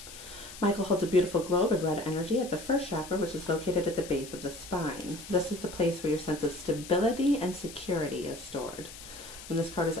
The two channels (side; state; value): left; noise; hiss, 14 dB below the sound